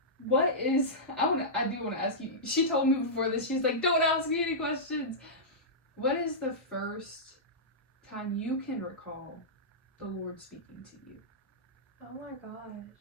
I do want to ask you, she told me before this, she's like, don't ask me any questions. What is the first time you can recall the Lord speaking to you? Oh my gosh.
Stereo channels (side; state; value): both; normal; correlation -0.13